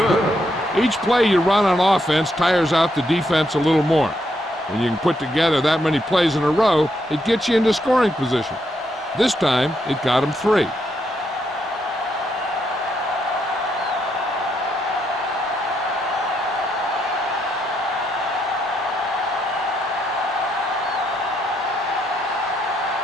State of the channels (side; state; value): both; normal; correlation 0.77